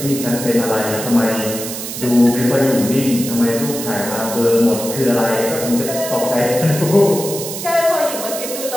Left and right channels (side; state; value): right; noise; hiss, 7 dB below the sound